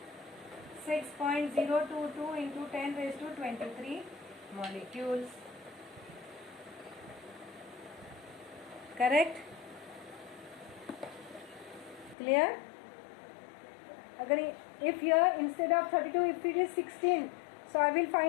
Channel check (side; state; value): right; drops out; at 12.2 s